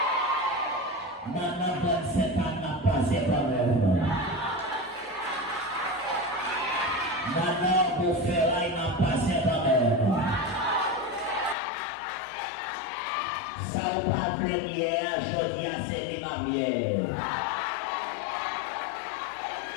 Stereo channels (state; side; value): drops out; right; at 11.6 s